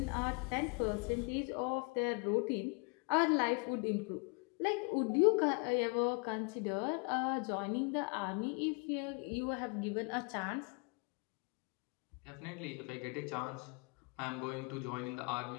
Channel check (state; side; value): quieter; right; 33.4 dB